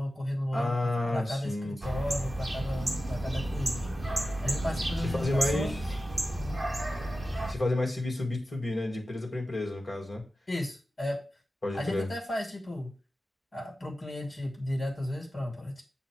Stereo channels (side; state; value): both; normal; correlation 0.94